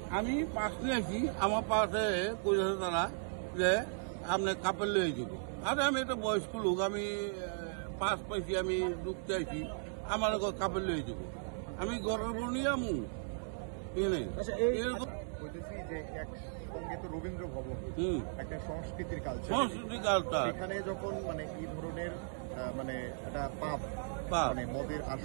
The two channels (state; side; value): silent; left; digital silence